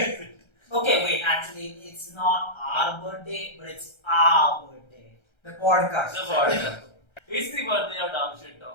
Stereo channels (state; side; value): late; right; 1.3 ms